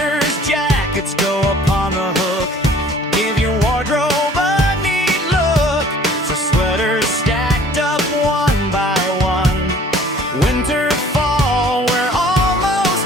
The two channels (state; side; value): normal; both; correlation 0.52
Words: jackets go up on the hook. Give your wardrobe a neat look. So sweaters stacked up one by one. Winter, fall, we're almost